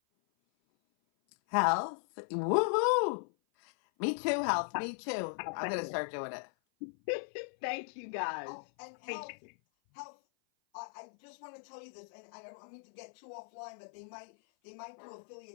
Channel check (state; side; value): silent; right; 53 dB below the other